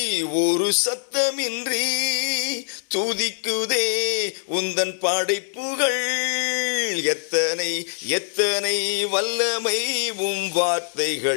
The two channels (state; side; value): silent; right; 63 dB below the other